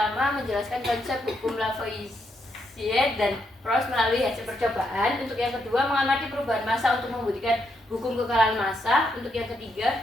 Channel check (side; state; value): both; normal; correlation 0.79